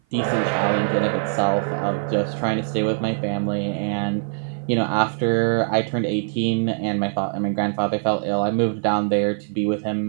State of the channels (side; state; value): left; silent; 56 dB below the other